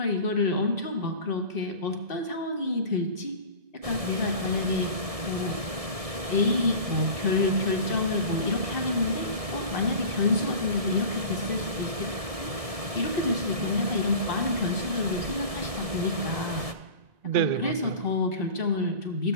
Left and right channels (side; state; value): left; late; 1.6 ms